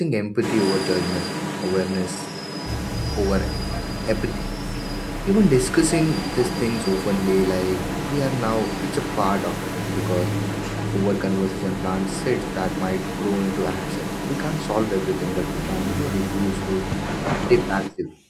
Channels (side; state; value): both; identical; correlation 1.00